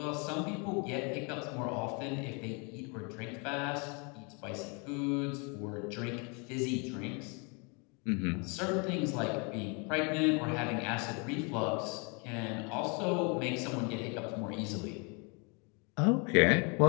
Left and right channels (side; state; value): right; quieter; 33.1 dB